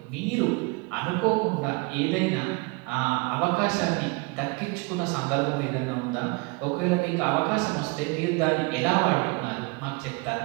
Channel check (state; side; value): quieter; left; 27.8 dB